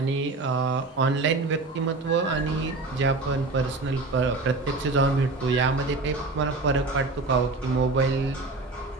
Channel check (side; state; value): left; quieter; 3.5 dB